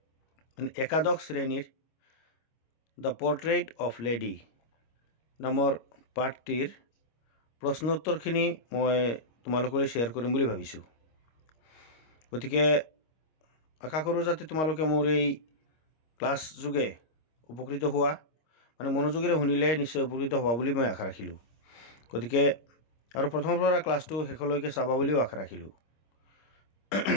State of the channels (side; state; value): right; late; 25 ms